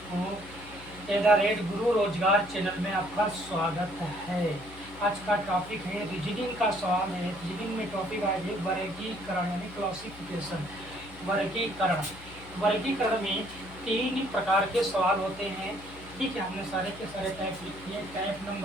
@गुरु रोजगार चैनल में आपका स्वागत है। आज का टॉपिक है रीजनिंग का सवाल है। रीजनिंग में टॉपिक आज है वर्गीकरण यानी क्लासिफिकेशन। वर्गीकरण वर्गीकरण में 3 प्रकार के सवाल होते हैं। ठीक है, हमने सारे के सारे टाइप लिख दिए। टाइप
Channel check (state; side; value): noise; left; hum, 18 dB below the sound